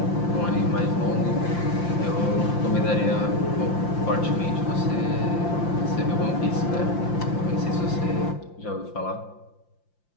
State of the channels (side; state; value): right; late; 5.8 ms